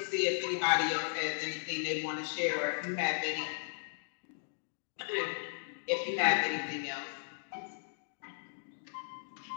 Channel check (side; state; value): right; silent; digital silence